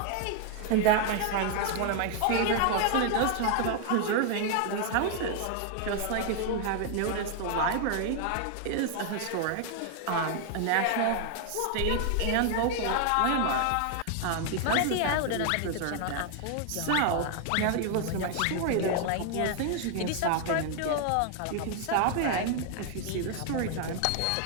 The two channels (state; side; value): different; both; correlation 0.00